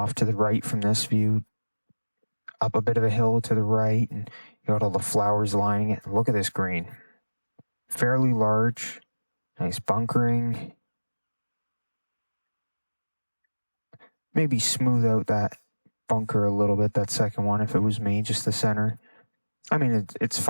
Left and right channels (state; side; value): inverted; both; correlation -1.00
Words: to the right from this view, up a bit of a hill to the right, and you got all the flowers lining it. And look at this green. Fairly large, nice bunkering. Maybe smooth out that bunker a little bit, that second one, if it was me, just the center. I mean, it's